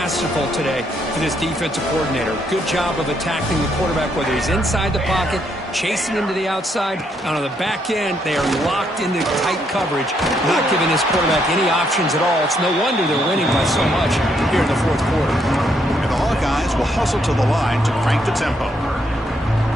today for this defensive coordinator. Good job of attacking the quarterback, whether he's inside the pocket, chasing him to the outside. And on the back end, they are locked into tight coverage, not giving this quarterback any options at all. It's no wonder they're winning by so much here in the 4th quarter. And the Hawkeyes will hustle to the line to crank the tempo.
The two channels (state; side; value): normal; both; correlation 0.74